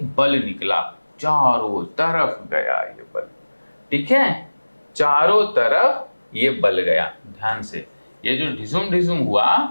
बल निकला, चारों तरफ गया ये बल, ठीक है, चारों तरफ ये बल गया। ध्यान से, ये जो ढिसुम ढिसुम हुआ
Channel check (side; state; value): both; inverted; correlation -1.00